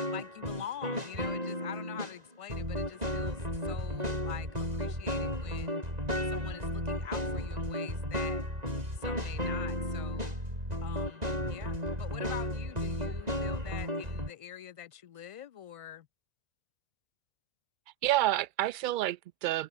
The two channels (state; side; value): late; left; 1.9 ms